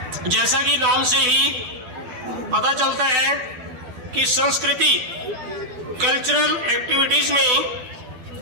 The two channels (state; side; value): late; left; 12 ms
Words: जैसा कि नाम से ही पता चलता है कि संस्कृति कल्चरल एक्टिविटीज